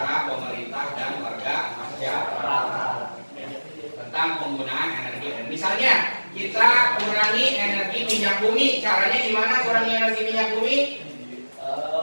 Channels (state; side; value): inverted; both; correlation -1.00